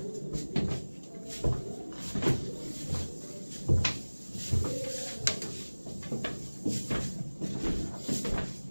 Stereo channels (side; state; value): both; inverted; correlation -1.00